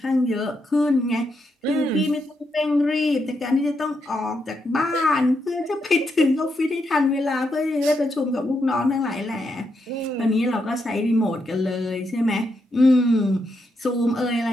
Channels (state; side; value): normal; both; correlation 0.81